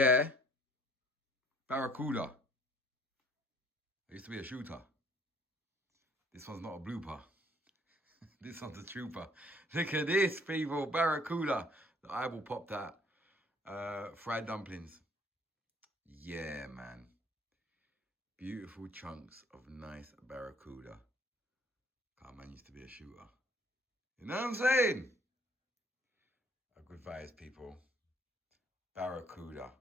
Barracuda. I used to be a shooter. This one's not a blooper. This one's a trooper. Look at this, people. Barracuda. The eyeball popped out. Fried dumplings. Yeah, man. Beautiful chunks of nice barracuda. God, man used to be a shooter. You know what I'm saying? A good vibes, people. Barracuda.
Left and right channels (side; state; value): both; normal; correlation 0.59